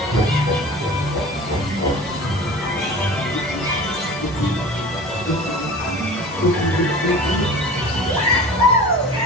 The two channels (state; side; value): normal; both; correlation 0.38